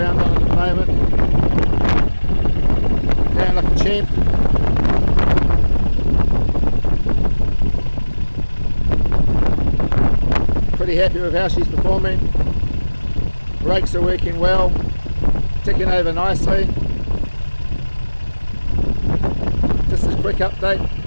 on it at the moment. Going like a champ. Pretty happy with how she's performing. Brakes are working well, ticking over nicely. Just a quick update.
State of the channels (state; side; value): inverted; both; correlation -1.00